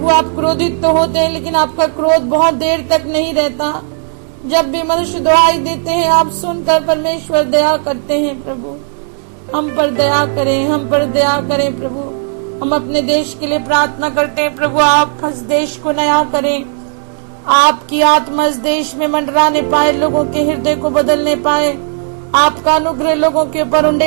आप क्रोधित तो होते हैं, लेकिन आपका क्रोध बहुत देर तक नहीं रहता। जब भी मनुष्य दुहाई देते हैं, आप सुनकर परमेश्वर दया करते हैं प्रभु। हम पर दया करें, हम पर दया करें प्रभु। हम अपने देश के लिए प्रार्थना करते हैं प्रभु, आप इस देश को नया करें, आपकी आत्मा इस देश में मंडराने पाए, लोगों के हृदय को बदलने पाए, आपका अनुग्रह लोगों के ऊपर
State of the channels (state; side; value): silent; left; 69 dB below the other